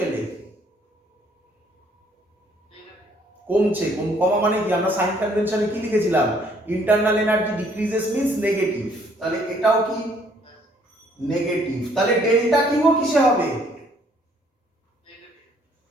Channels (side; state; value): both; normal; correlation 0.64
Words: কমছে। কমা মানে কি, আমরা সাইন কনভেনশনে কি লিখেছিলাম, internal energy decreases means negative, তাহলে এটাও কি নেগেটিভ। তাহলে ডেল্টা কিউ কিসে হবে?